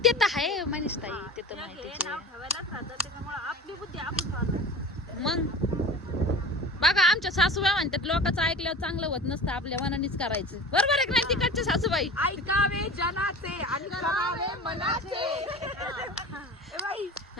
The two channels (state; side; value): normal; both; correlation 0.36